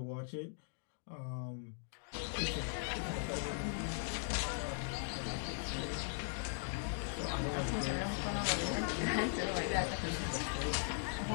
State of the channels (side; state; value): right; silent; digital silence